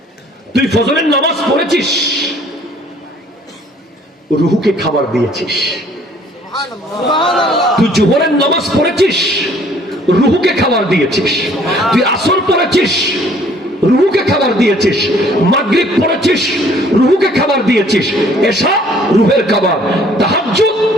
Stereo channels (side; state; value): both; normal; correlation 0.58